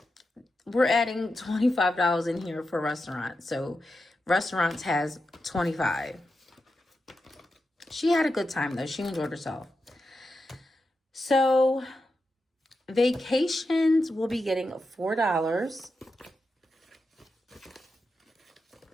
we're adding $25 in here for restaurants. So restaurants has $25. She had a good time, though. She enjoyed herself. So vacations will be getting $4.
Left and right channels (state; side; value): normal; both; correlation 0.88